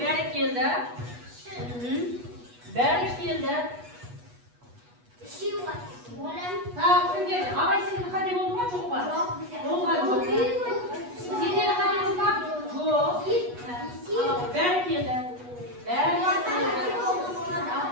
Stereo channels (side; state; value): left; late; 8.2 ms